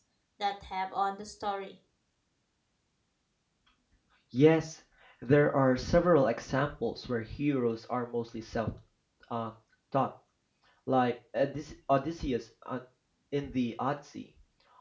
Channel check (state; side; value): identical; both; correlation 1.00